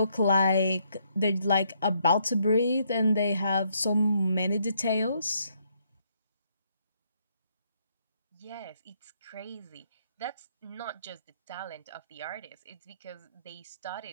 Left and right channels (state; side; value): inverted; both; correlation -0.72